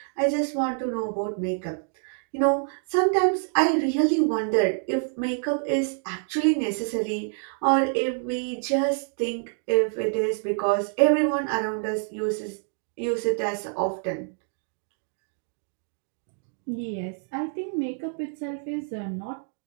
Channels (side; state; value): left; silent; 60 dB below the other